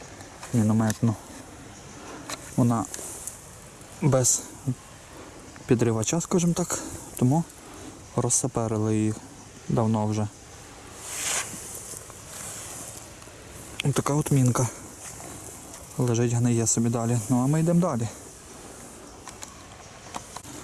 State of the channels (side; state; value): both; identical; correlation 1.00